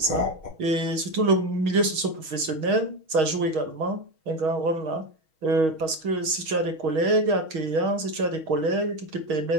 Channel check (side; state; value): left; late; 6.3 ms